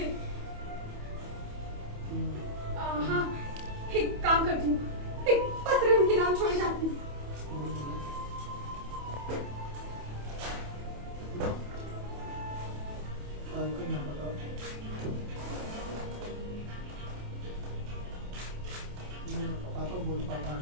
हाँ, एक काम करती हूँ, एक पत्र उनके नाम छोड़ जाती हूँ।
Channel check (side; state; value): left; late; 28 ms